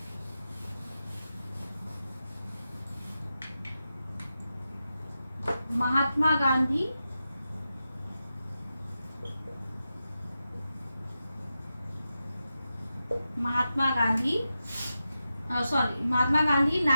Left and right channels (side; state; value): both; inverted; correlation -0.90